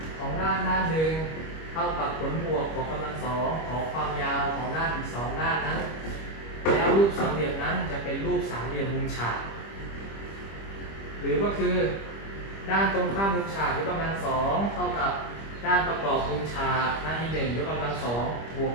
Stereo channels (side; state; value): right; late; 25 ms